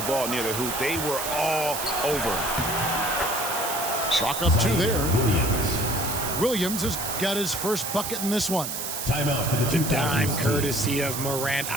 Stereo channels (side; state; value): right; noise; hiss, 4 dB below the sound